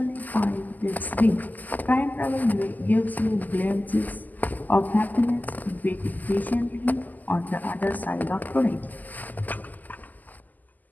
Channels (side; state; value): right; late; 0.083 ms